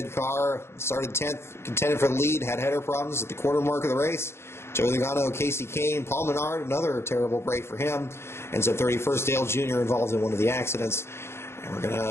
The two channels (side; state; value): right; late; 0.12 ms